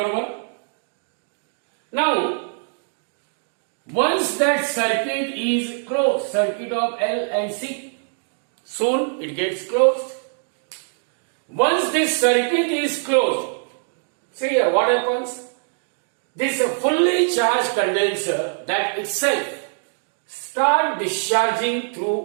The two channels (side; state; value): left; silent; digital silence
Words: 1. Now, once that circuit is closed, circuit of L and C, soon it gets closed. Once this circuit is closed, see here what happens? This fully charged condenser that itself start discharging